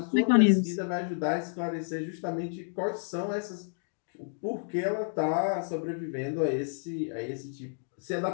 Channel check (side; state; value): right; silent; digital silence